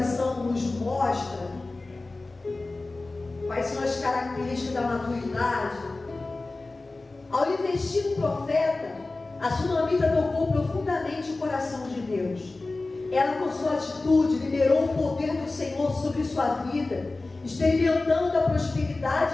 nos mostra quais são as características da maturidade. Ao investir no profeta, a sunamita tocou profundamente o coração de Deus. Ela, com sua atitude, liberou o poder do Senhor sobre sua vida, experimentando a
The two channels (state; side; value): quieter; right; 3.3 dB